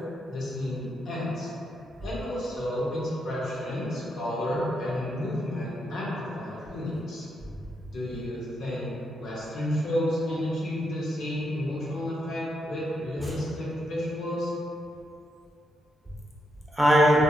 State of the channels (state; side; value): normal; both; correlation 0.81